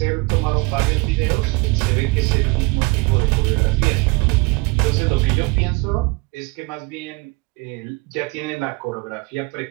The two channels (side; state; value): left; quieter; 26.4 dB